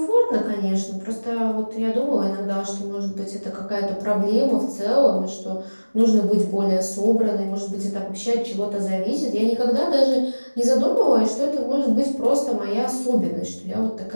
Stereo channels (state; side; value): inverted; both; correlation -1.00